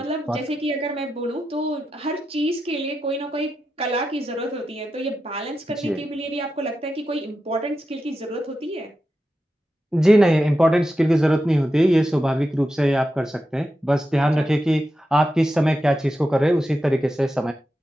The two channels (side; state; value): both; normal; correlation 0.89